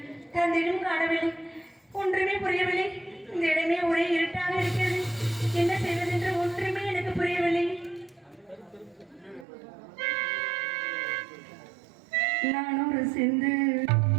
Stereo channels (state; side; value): drops out; left; at 9.5 s